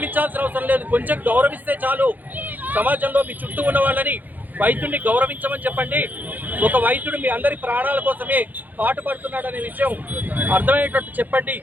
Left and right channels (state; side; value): late; left; 0.084 ms